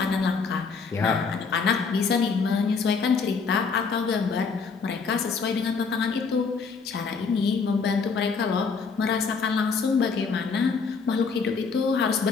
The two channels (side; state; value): right; quieter; 5.1 dB